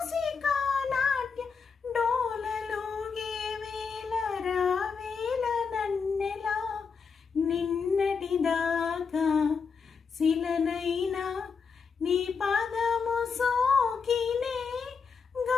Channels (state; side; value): quieter; right; 5.6 dB